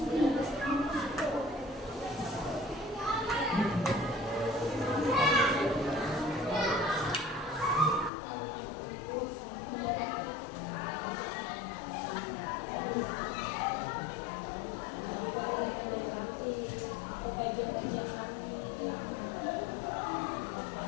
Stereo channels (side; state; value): right; drops out; at 8.1 s